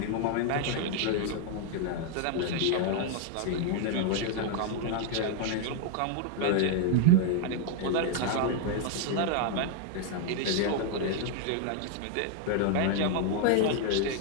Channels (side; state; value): both; different; correlation 0.00